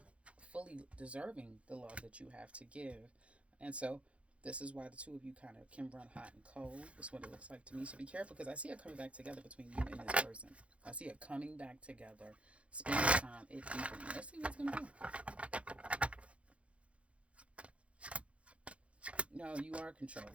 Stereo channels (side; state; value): left; late; 0.062 ms